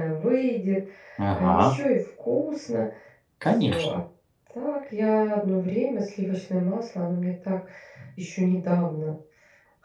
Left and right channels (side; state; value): both; identical; correlation 1.00